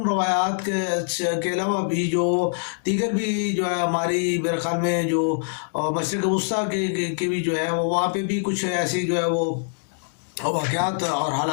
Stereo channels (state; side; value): silent; right; digital silence